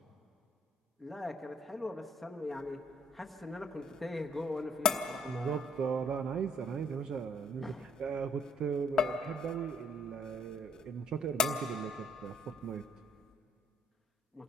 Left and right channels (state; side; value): normal; both; correlation 0.61